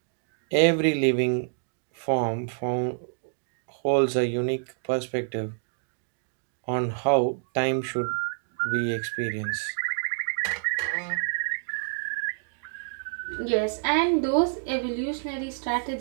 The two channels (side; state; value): left; silent; digital silence